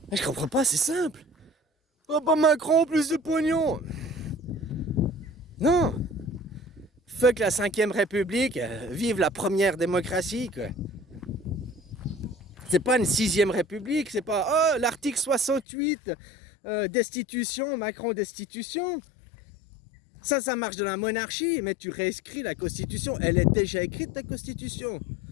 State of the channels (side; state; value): right; drops out; at 15.7 s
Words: Mais je comprends pas, c'est simple. Oh, pas Macron, plus de pognon. Non. Fuck la 5ème République, vive la première démocratie, quoi. C'est pas une 6ème République, c'est pas oh l'article 68, destitution, Macron destitution. Ça marche dans la monarchie, mais tu réécris la constitution, elle est déjà écrite la constitution.